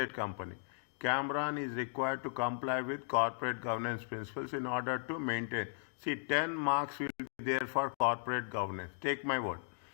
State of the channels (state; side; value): silent; right; digital silence